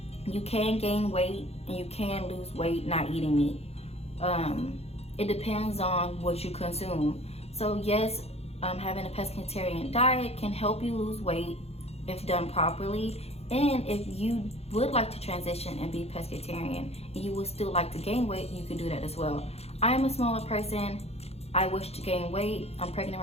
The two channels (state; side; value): late; right; 0.30 ms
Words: You can gain weight and you can lose weight not eating meat. It depends on what you consume. So yes, having a pescatarian diet can help you lose weight if done properly. And if you would like to transition and be pescatarian and you would still like to gain weight, you can do that as well. I am a smaller person. I wish to gain weight. I'm pregnant